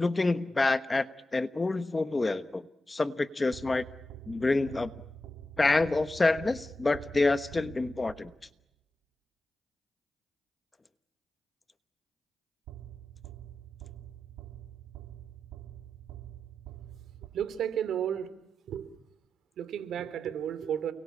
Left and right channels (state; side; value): normal; both; correlation 0.91